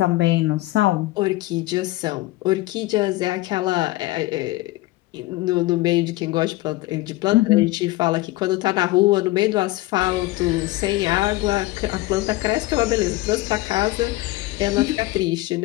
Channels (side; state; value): right; quieter; 18.7 dB